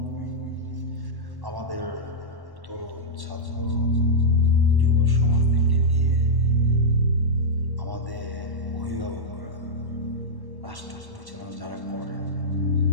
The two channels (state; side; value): late; left; 1.1 ms